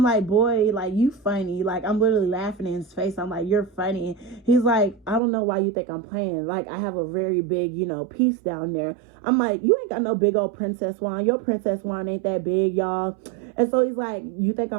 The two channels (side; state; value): left; drops out; at 5.2 s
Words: like, boy, like, you funny. Like, I'm literally laughing in his face. I'm like, you're funny. He's like, I don't know why you think I'm playing. Like, I have a very big, piece down there. I'm like, you ain't got no big old princess wine. Your princess wine ain't that big, y'all. And so he's like, you think